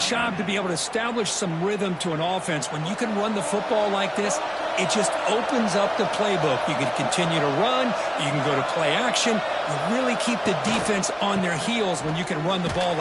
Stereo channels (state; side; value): identical; both; correlation 1.00